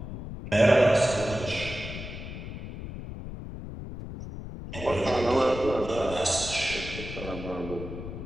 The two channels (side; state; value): left; noise; rumble, 9 dB below the sound